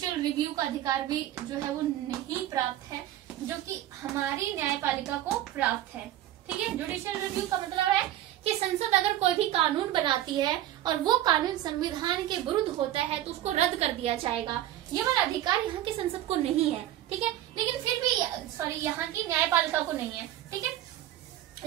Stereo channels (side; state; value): left; quieter; 13.1 dB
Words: रिव्यू का अधिकार भी जो है वो नहीं प्राप्त है, जो कि हमारी न्यायपालिका को प्राप्त है। ठीक है, जुडिशियल रिव्यू का मतलब है कि संसद अगर कोई भी कानून बनाती है और वो कानून संविधान के विरुद्ध होता है तो उसको रद्द कर दिया जाएगा। ये वाला अधिकार यहाँ की संसद को नहीं है। ठीक है, लेकिन फिर भी यहाँ की न्यायपालिका को नहीं है। ठीक है,